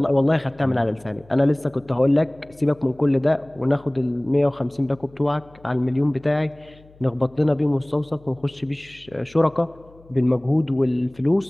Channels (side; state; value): left; noise; hum, 26 dB below the sound